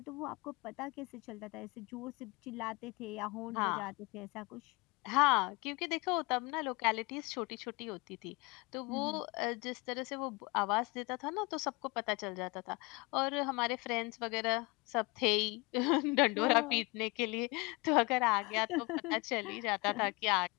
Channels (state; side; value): quieter; right; 26.0 dB